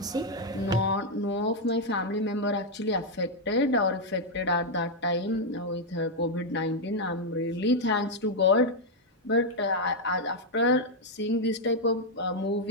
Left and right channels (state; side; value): normal; both; correlation 0.00